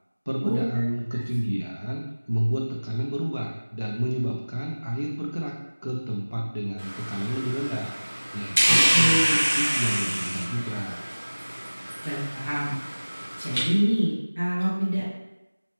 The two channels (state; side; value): inverted; both; correlation -1.00